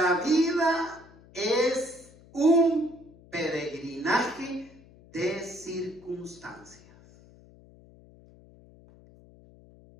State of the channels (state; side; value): noise; left; hum, 24 dB below the sound